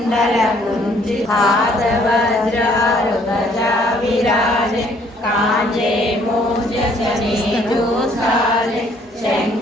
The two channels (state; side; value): normal; both; correlation 0.62